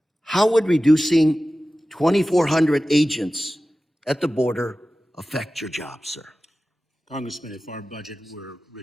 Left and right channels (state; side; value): normal; both; correlation 0.95